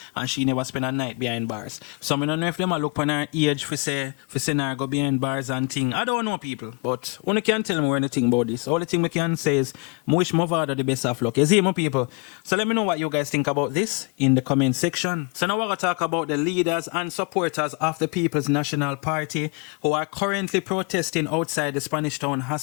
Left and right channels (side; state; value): right; quieter; 32.9 dB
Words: And she never spend a night behind bars. So I don't know if them look on her age for say her go behind bars and thing. I don't know, people. But one can't tell me anything about this. All the thing we can say is I wish Mavado the best of luck. You see, my people. So let me know what you guys think about this in the comment section. So now we're going to talk about the leaders and supporters of the People's National Party who are currently protesting outside the Spanish Town